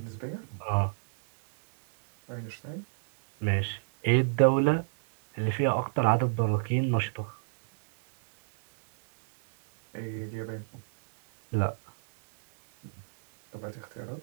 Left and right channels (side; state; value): left; silent; 59 dB below the other